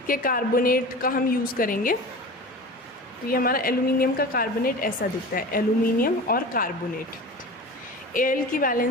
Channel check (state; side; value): normal; both; correlation 0.34